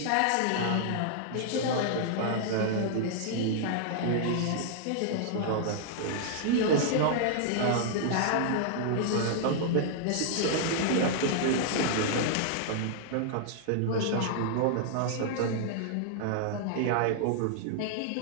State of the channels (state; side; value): different; both; correlation -0.01